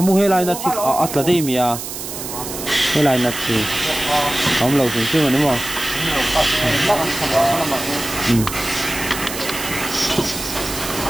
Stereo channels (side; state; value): right; noise; hiss, 8 dB below the sound